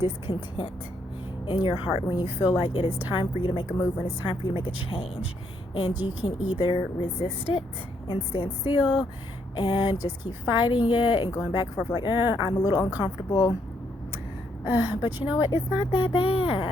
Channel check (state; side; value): normal; both; correlation 0.74